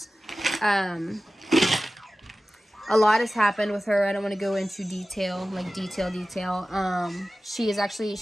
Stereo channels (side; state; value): both; normal; correlation 0.96